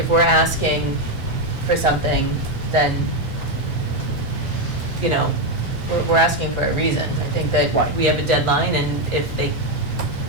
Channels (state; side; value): late; right; 3.2 ms